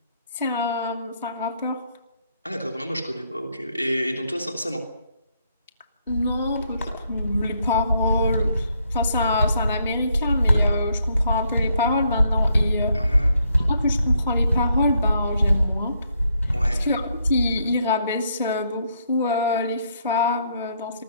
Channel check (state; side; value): inverted; both; correlation -0.73